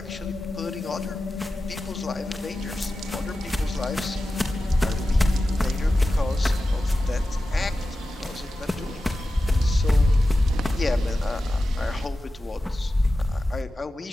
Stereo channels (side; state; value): both; normal; correlation 0.93